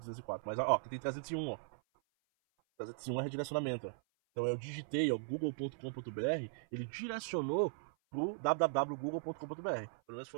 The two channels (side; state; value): left; silent; 52 dB below the other